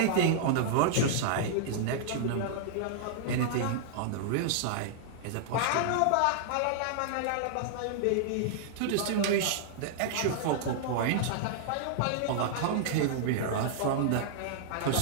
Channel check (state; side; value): different; both; correlation -0.01